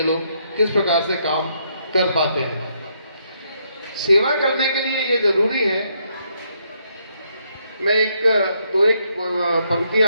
लोग किस प्रकार से काम कर पाते हैं। सेवा करने के लिए ये जरूरी है, मैं एक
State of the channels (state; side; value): inverted; both; correlation -0.75